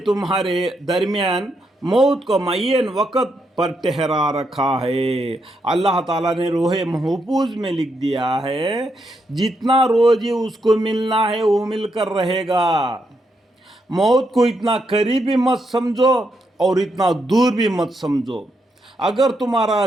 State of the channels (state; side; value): normal; both; correlation 0.80